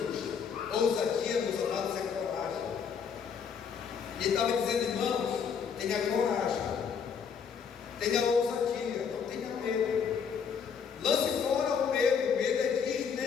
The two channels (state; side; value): quieter; right; 6.7 dB